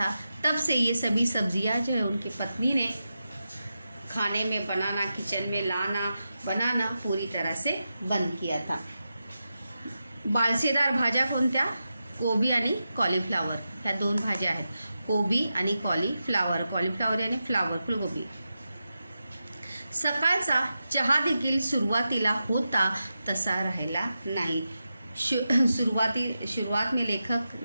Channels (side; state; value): both; inverted; correlation -0.90